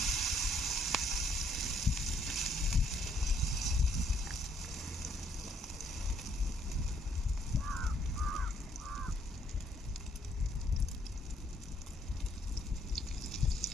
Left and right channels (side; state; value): both; normal; correlation 0.68